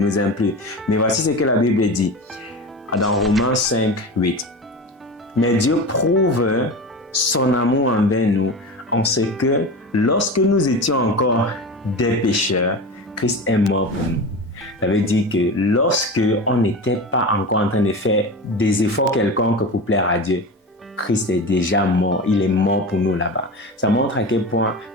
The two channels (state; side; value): normal; both; correlation 0.28